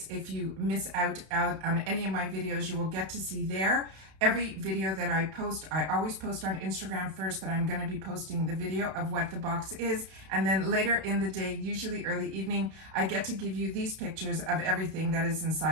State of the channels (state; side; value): late; left; 31 ms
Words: If you miss out on any of my videos, you will get to see there. Every video that I post, I always post on Instagram first that I'm going to be posting the video of what the box is. And then later in the day, usually early evening, I get to give you these pictures of everything that is